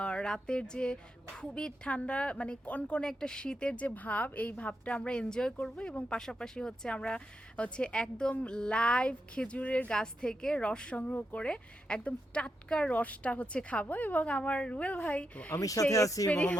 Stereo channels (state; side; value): normal; both; correlation 0.85